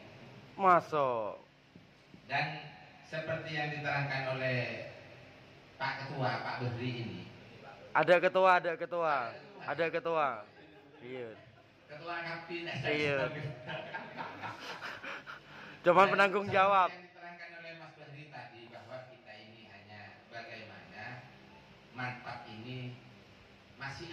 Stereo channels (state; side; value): identical; both; correlation 1.00